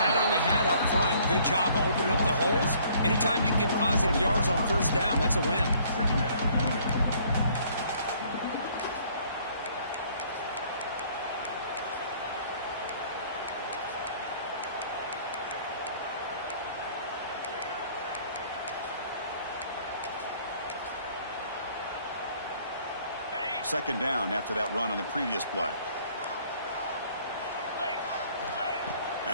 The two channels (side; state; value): both; inverted; correlation -0.59